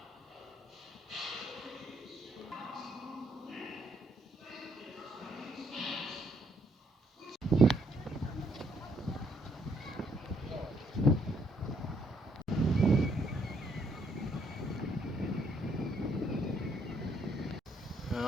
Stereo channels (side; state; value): both; normal; correlation 0.70